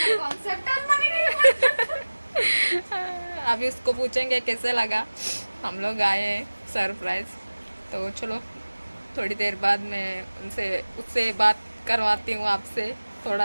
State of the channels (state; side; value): inverted; both; correlation -1.00